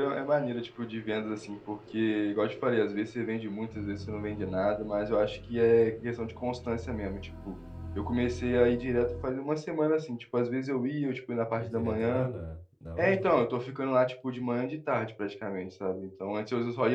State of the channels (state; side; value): identical; both; correlation 1.00